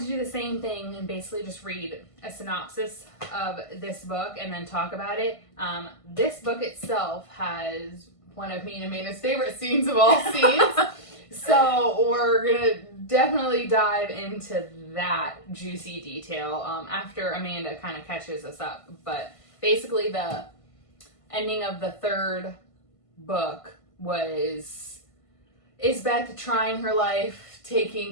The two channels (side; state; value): right; late; 1.5 ms